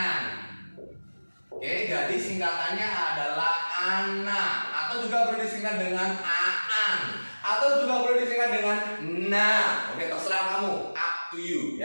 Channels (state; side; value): inverted; both; correlation -1.00